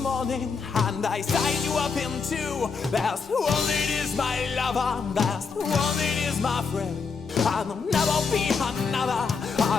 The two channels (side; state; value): right; quieter; 5.2 dB